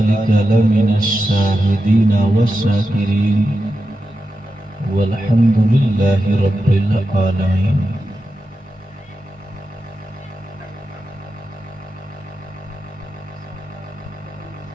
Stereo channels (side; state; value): both; normal; correlation 0.89